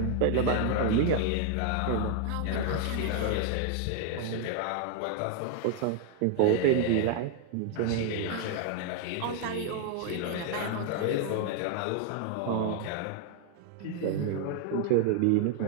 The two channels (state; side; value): different; both; correlation 0.00